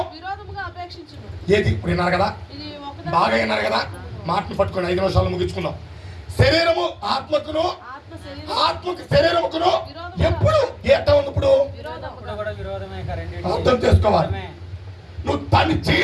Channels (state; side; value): identical; both; correlation 1.00